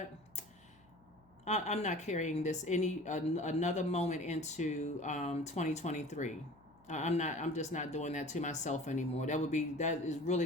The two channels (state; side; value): noise; left; hum, 30 dB below the sound